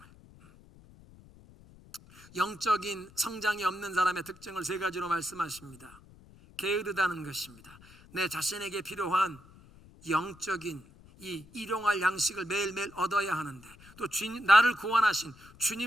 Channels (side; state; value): left; noise; rumble, 23 dB below the sound